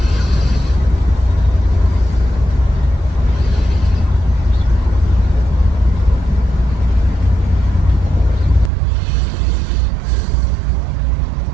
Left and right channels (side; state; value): left; drops out; at 8.7 s